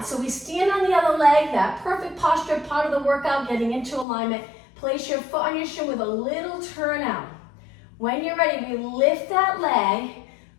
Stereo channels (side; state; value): right; drops out; at 4.0 s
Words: So we stand on the other leg, that perfect posture, part of the workout, getting into alignment. Place your foot on your shin with a little turn out. When you're ready, we lift that leg,